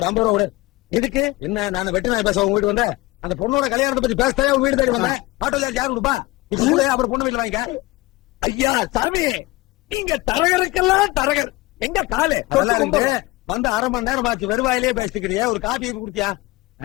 50 ரூபா விடு. எதுக்கு? என்ன, நான் வெட்டி நாய் பேச உங்க வீட்டு வந்தேன். அந்த பொண்ணோட கல்யாணத்தை பத்தி பேசவே உங்க வீடு தேடி வந்தேன். ஆட்டோ சார்ஜ் யாரு கொடுப்பா? இப்ப கூட அப்புறம் பொண்ணு வீட்டுல வாங்கிக்க. ஐயா சாமி, நீங்க தரகருக்கெல்லாம் தரகர். எங்க காலு அதெல்லாம் இருக்கு. வந்து 1/2 மணி நேரம் ஆச்சு. வெறுவாயிலே பேசிக்கிறியே. ஒரு காபி குடுத்தியா?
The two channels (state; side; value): quieter; right; 21.1 dB